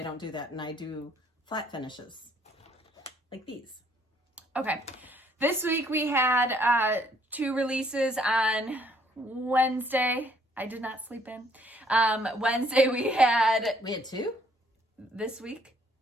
don't do that. And I do flat finishes like these. Okay. This week we had 2 releases on Wednesday. I did not sleep in. Wednesday we had 2? this week.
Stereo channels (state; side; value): normal; both; correlation 0.65